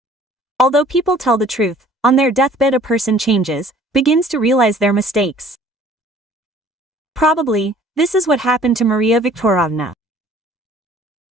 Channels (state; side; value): normal; both; correlation 0.53